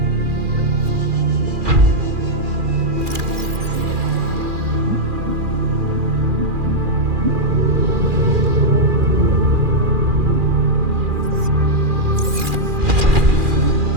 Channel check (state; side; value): late; left; 2.4 ms